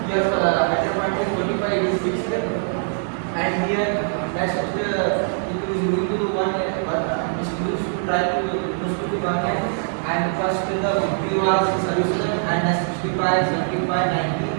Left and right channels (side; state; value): left; silent; 64 dB below the other